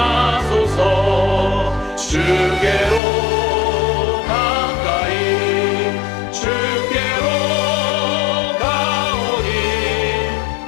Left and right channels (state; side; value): drops out; right; at 3.0 s